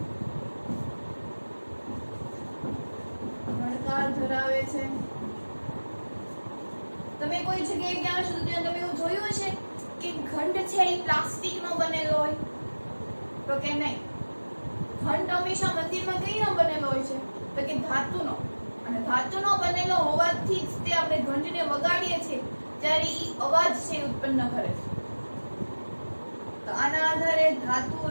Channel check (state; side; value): inverted; both; correlation -1.00